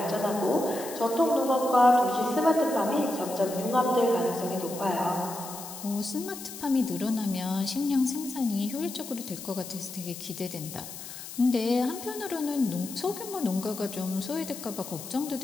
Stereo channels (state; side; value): noise; left; hiss, 11 dB below the sound